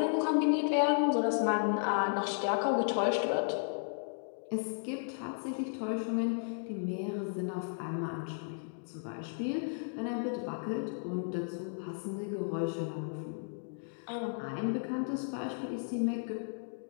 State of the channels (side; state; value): right; silent; digital silence